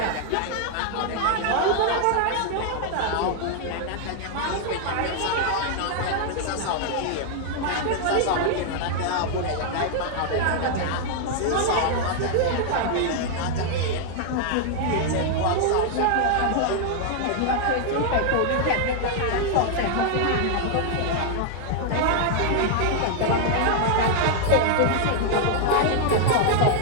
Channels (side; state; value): both; different; correlation 0.00